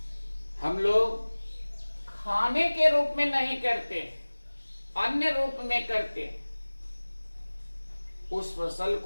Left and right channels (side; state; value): both; inverted; correlation -1.00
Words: हम लोग खाने के रूप में नहीं करते, अन्य रूप में करते, उस फसल